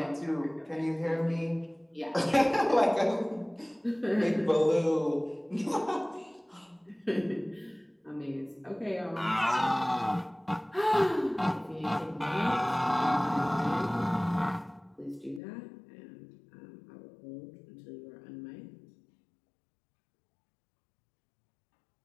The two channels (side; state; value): right; drops out; at 15.4 s